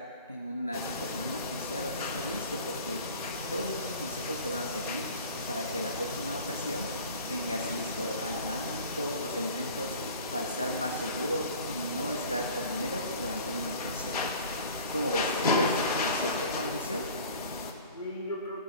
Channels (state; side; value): inverted; both; correlation -0.43